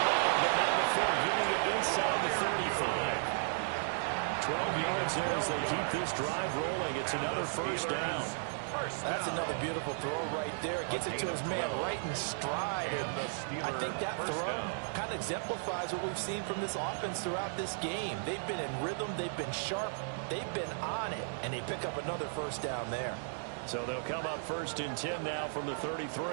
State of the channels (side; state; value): left; silent; digital silence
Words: but not before getting it inside the 35. 12 yards there as they keep this drive rolling. It's another first down. That's another beautiful throw right there. It gets it to his man right in stride. And I think that throw kind of exemplifies what we've seen from this offense throughout this game. They've been in rhythm. They've been sharp. They've been on it. And they pick up another first down there. So they'll come up first and 10 now from the